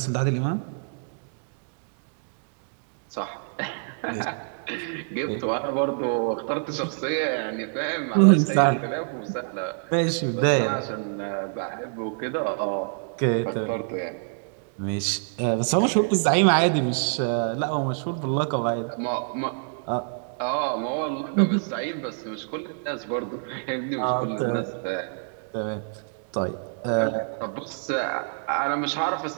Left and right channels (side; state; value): left; silent; digital silence